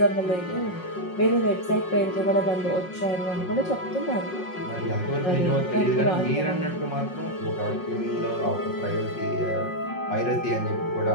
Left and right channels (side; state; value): right; late; 5.5 ms